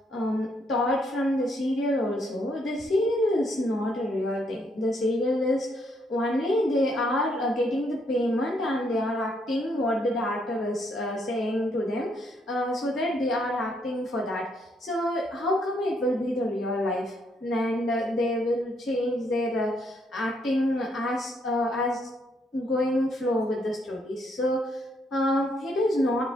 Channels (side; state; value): both; normal; correlation 0.73